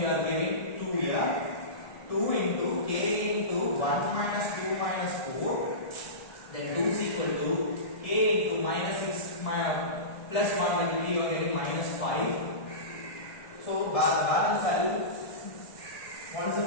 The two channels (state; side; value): late; right; 1.7 ms